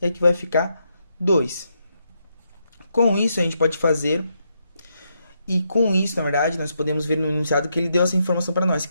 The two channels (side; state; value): both; inverted; correlation -0.80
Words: e aqui vai ficar 2. Com isso, a gente pode fazer... E com isso, na verdade, nós podemos ver no enunciado que ele deu essa informação para nós,